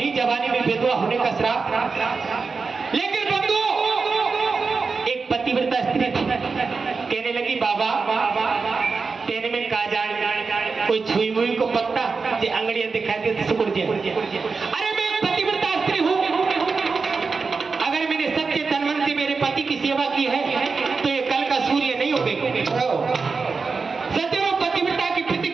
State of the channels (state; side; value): quieter; left; 4.6 dB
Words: जवानी में विधवा होने का श्राप। लेकिन बंधुओं एक पतिव्रता स्त्री थी, कहने लगी, बाबा तेने में का जान, कोई छुई मुई को पत्ता जे अंगड़ियां दिखाई दे सुकुड़ जाए। अरे मैं एक पतिव्रता स्त्री हूँ, अगर मैंने सच्चे तन मन से मेरे पति की सेवा की है तो ये कल का सूर्य नहीं उगेगा। सदैव पतिव्रता की